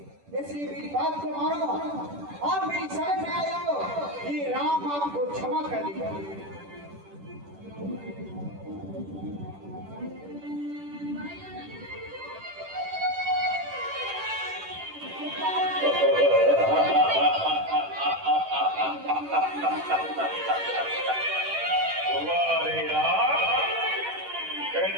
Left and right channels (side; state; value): left; late; 10 ms